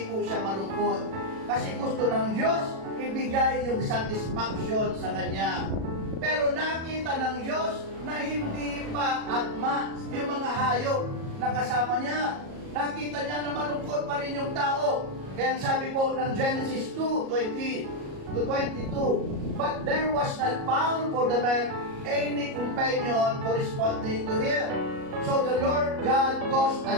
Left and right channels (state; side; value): late; left; 37 ms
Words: po siya malungkot. Kasi gusto ng Diyos ibigay yung satisfaction sa Kanya. Pero nakita ng Diyos na hindi pa akma yung mga hayop na kasama niya. Nakita niya na malungkot pa rin yung tao. Kaya sabi po ng Genesis 2:20-22, but there was not found for the man any companion corresponding to him. So the Lord God caused